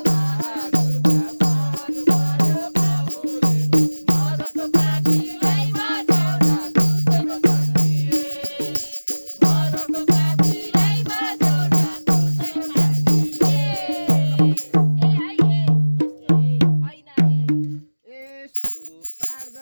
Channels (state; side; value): inverted; both; correlation -1.00